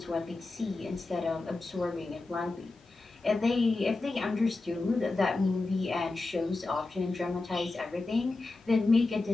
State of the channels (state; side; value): quieter; right; 3.4 dB